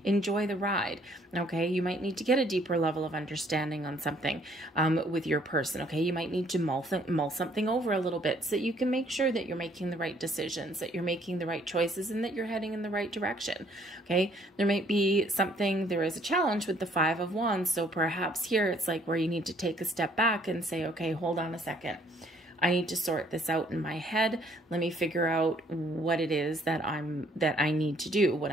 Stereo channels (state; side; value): normal; both; correlation 0.63